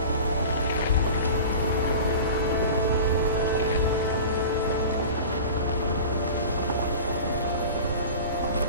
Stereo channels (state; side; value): inverted; both; correlation -0.36